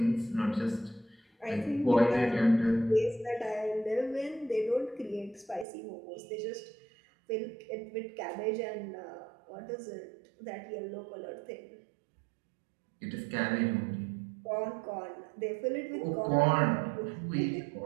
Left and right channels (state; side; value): drops out; left; at 5.7 s